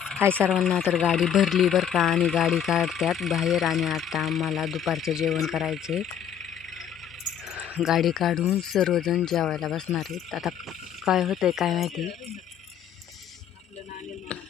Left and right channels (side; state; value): right; quieter; 8.8 dB